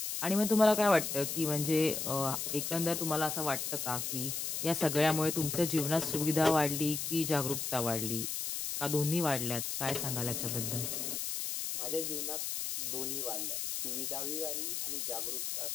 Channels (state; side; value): noise; left; hiss, 3 dB below the sound